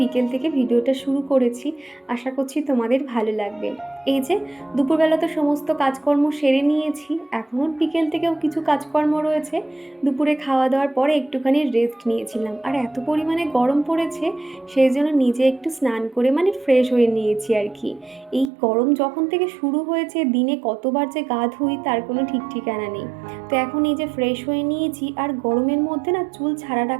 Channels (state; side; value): drops out; left; at 18.5 s